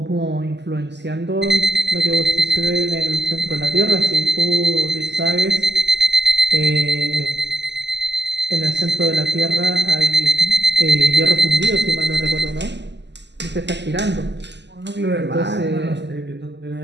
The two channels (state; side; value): late; left; 0.51 ms